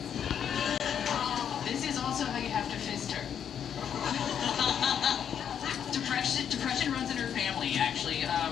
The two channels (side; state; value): right; quieter; 8.6 dB